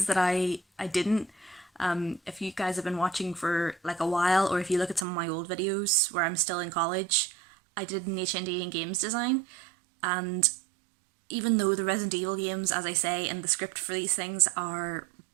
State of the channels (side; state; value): left; drops out; at 5.1 s